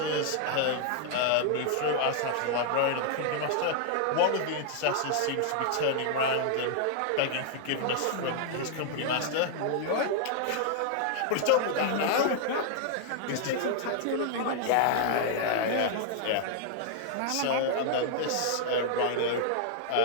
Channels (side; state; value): both; different; correlation 0.00